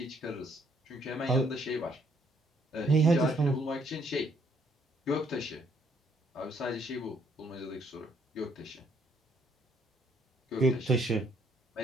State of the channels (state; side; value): normal; both; correlation 0.68